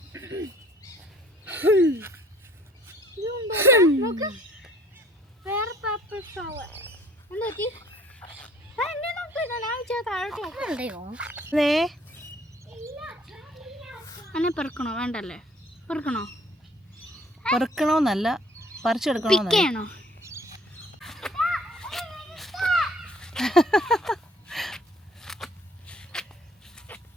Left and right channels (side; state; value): both; normal; correlation 0.58